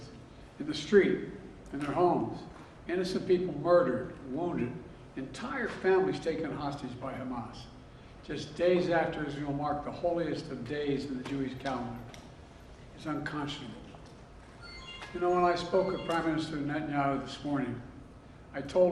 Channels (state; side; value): identical; both; correlation 1.00